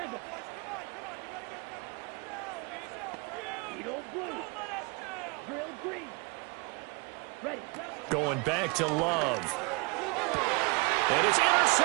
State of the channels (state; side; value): quieter; left; 29.7 dB